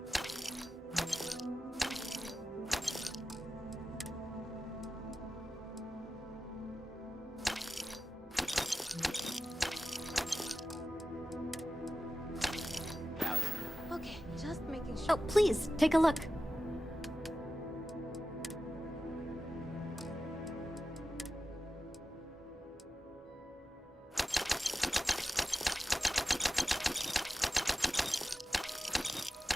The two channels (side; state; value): both; normal; correlation 0.93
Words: Okay, just making sure. Oh, please, take a look.